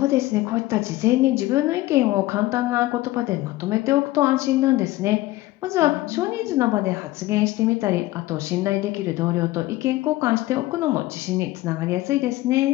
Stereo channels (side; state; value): right; quieter; 17.6 dB